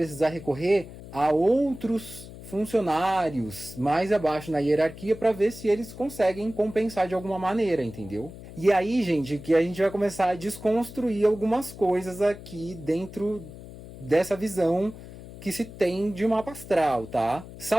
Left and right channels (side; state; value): left; noise; hum, 15 dB below the sound